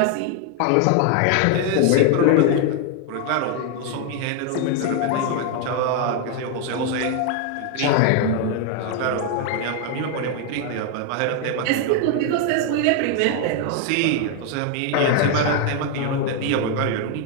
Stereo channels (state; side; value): different; both; correlation 0.00